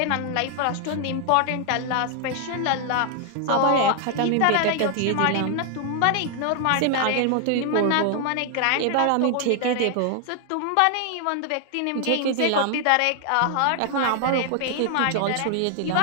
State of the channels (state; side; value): different; both; correlation 0.00